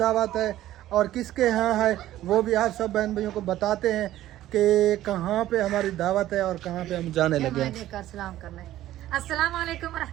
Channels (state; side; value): quieter; left; 14.0 dB